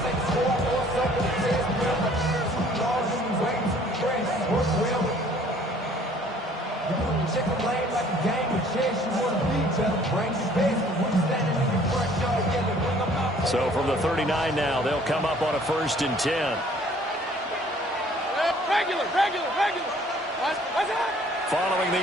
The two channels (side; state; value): both; normal; correlation 0.56